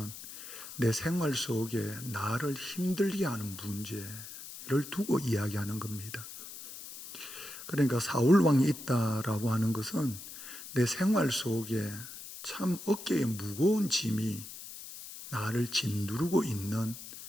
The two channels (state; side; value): noise; left; hiss, 12 dB below the sound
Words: 내 생활 속에 나를 힘들게 하는 문제를 두고 이야기하는 겁니다. 그러니까 사울 왕이 있다라고 하는 것은 내 생활 속에 참 어깨에 무거운 짐이 나를 짓누르고 있는